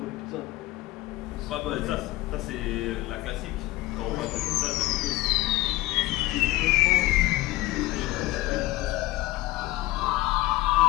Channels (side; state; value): right; quieter; 18.0 dB